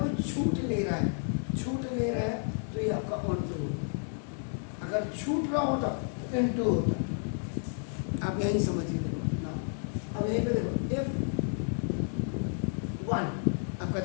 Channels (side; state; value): right; silent; 57 dB below the other